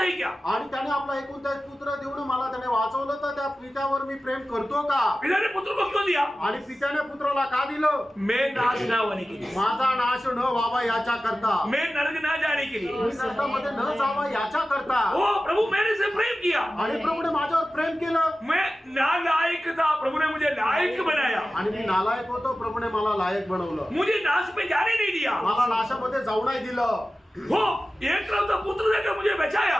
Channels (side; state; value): both; normal; correlation 0.95